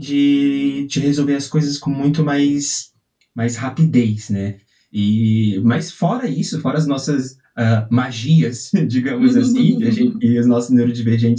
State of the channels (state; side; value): identical; both; correlation 1.00